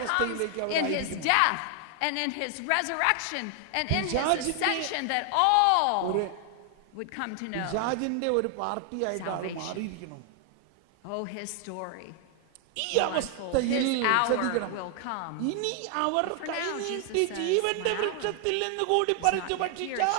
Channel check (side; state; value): both; different; correlation 0.00